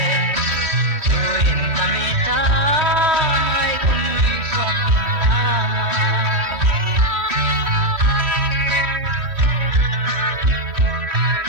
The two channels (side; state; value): left; late; 3.1 ms